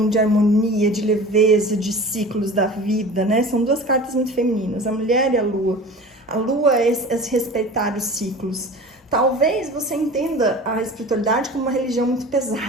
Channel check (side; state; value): both; normal; correlation 0.38